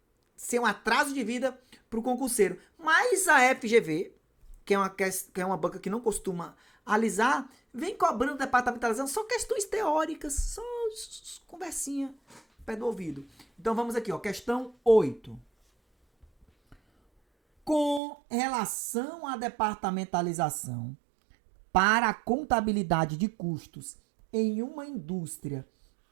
ser um atraso de vida pro concurseiro. Mas a FGV, que é uma banca que não costuma alisar, vem cobrando departamentalização só questões teóricas, só conversinha, pé do ouvido. Então vamos aqui, ó, questão 8. Com relação à departamentalização para a contabilidade de custos em uma indústria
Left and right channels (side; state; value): left; drops out; at 18.0 s